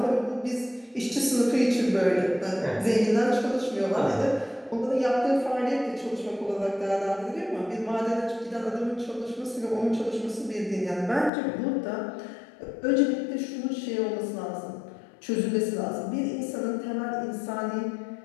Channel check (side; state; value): right; drops out; at 11.3 s